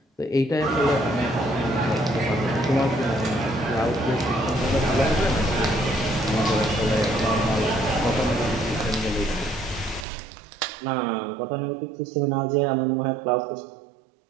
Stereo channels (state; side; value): drops out; left; at 10.1 s